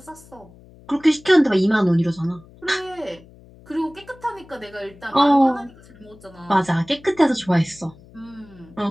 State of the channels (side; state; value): left; noise; hum, 24 dB below the sound